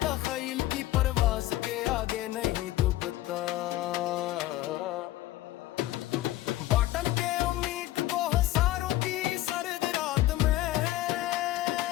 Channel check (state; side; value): quieter; right; 15.7 dB